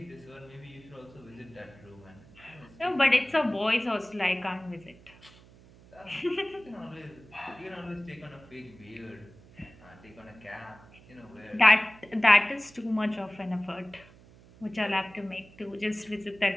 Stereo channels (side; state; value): right; noise; hum, 23 dB below the sound